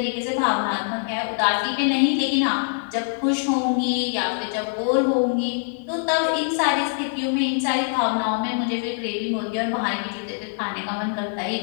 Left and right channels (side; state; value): right; silent; digital silence